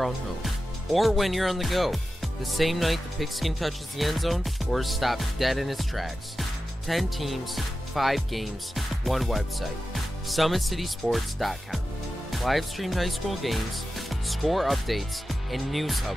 own home, or when you're on the go. The same night the pigskin touches the end zone or is stopped dead in its tracks. 10 teams, 5 games, 1 website. SummitCitySports.com. Live streamed high school games, score updates, and news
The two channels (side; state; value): both; normal; correlation 0.93